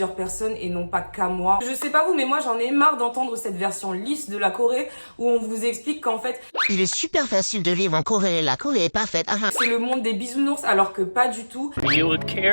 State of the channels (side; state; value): both; inverted; correlation -1.00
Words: personnes et non pas qu'à moi. Je sais pas vous, mais moi j'en ai marre d'entendre cette version lisse de la Corée où on vous explique qu'en fait il est super facile de vivre en Corée, la Corée est parfaite. c'est le monde des bisounours alors que pas du tout. Are you a